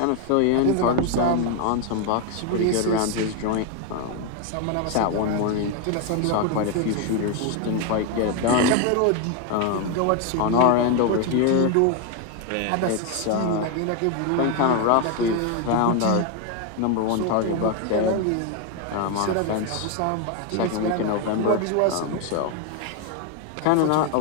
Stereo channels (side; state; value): both; different; correlation 0.01